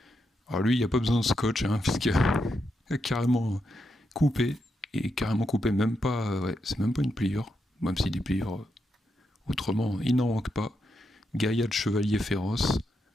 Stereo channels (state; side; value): normal; both; correlation 0.83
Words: Alors lui il n'y a pas besoin de scotch puisqu'il a carrément coupé, et carrément coupé, même pas, ouais, c'est même pas une pliure, même si des pliures autrement il n'en manque pas. Gaïa de chevalier féroce